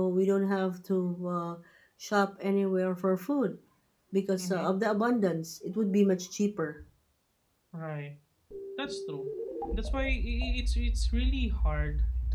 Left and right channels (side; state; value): both; identical; correlation 1.00